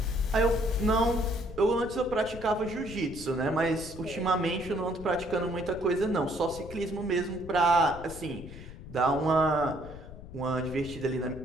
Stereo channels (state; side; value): noise; left; rumble, 14 dB below the sound